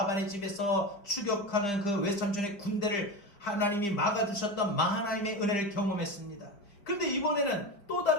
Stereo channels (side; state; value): right; late; 5.0 ms